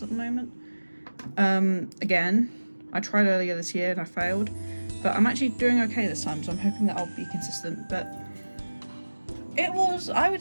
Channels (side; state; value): both; inverted; correlation -1.00